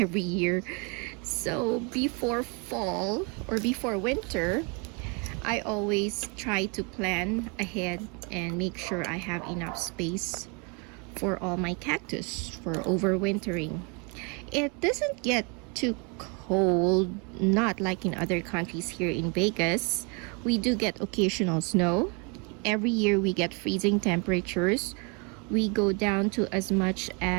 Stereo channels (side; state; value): left; quieter; 33.1 dB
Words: year. So before fall or before winter, I always try to plan ahead and make sure I have enough space for all my cactus for overwintering. It doesn't get too cold, not like in other countries. Here in Vegas, we do get occasional snow. Every year we get freezing temperatures. We go down to as much